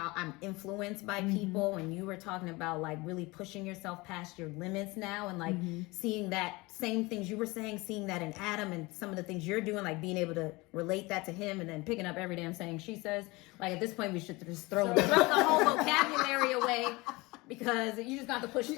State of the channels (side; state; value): right; quieter; 23.2 dB